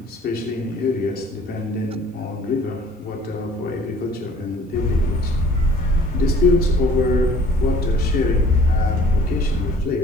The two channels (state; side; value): normal; both; correlation 0.52